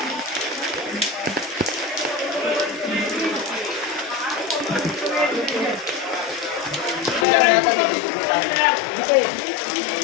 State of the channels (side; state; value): right; drops out; at 7.2 s